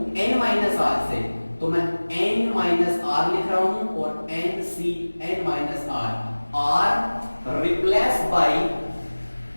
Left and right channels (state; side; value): inverted; both; correlation -1.00